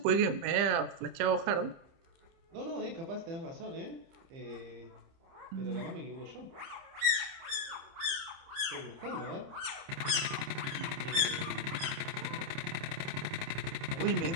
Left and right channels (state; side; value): late; left; 29 ms